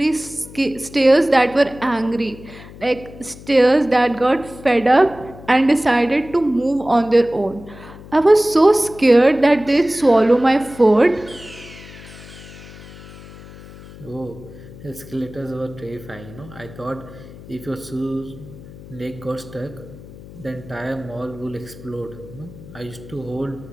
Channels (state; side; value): noise; left; hum, 17 dB below the sound